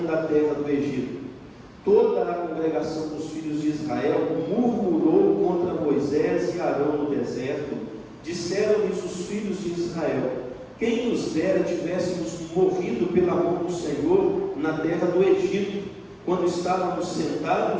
da terra do Egito. Toda a congregação dos filhos de Israel murmurou contra Moisés e Arão no deserto. Disseram-lhes os filhos de Israel: quem nos dera tivéssemos morrido pela mão do Senhor na terra do Egito, quando estávamos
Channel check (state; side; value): identical; both; correlation 1.00